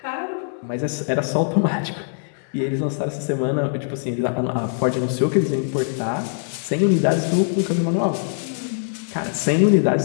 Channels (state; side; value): silent; right; digital silence